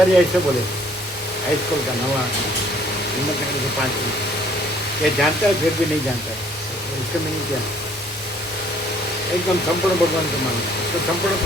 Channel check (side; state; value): both; normal; correlation 0.60